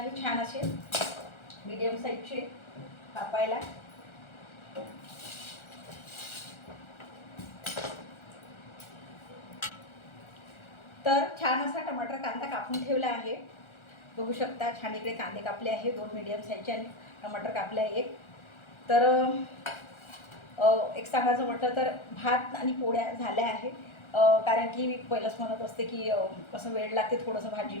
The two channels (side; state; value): right; late; 1.4 ms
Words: छान असे मीडियम साईजचे कापायला. तर छान असा टमाटर कांदा कापून ठेवला आहे. बघू शकता छान इकडे कांदे कापले आहे 2 मीडियम साईजचे आणि टमाटर कापले आहे 1. तर एक सांगायचं म्हटलं तर भात आणि पोळ्या झाल्या आहे. कारण की मी पहिलंच म्हणत असते की कसं वेळ लागते थोडंसं